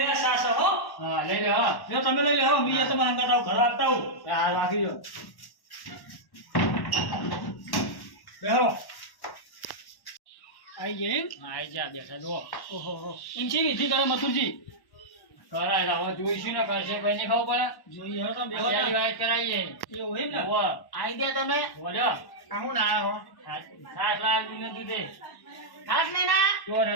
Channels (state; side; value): late; right; 1.1 ms